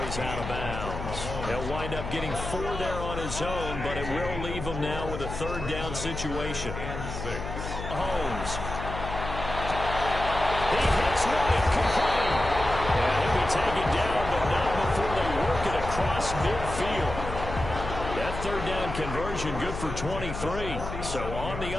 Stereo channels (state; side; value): noise; left; hum, 7 dB below the sound